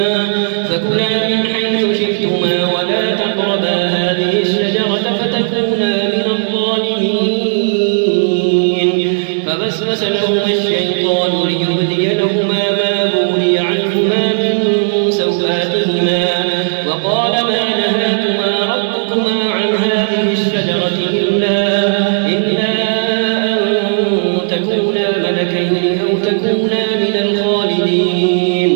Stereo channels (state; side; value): silent; left; digital silence